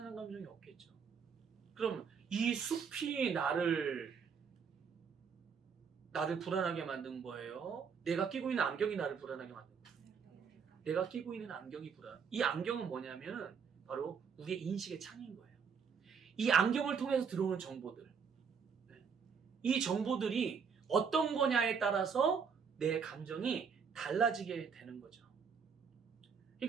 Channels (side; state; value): left; quieter; 6.3 dB